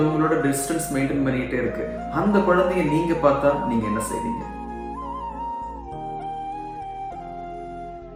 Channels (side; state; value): both; identical; correlation 1.00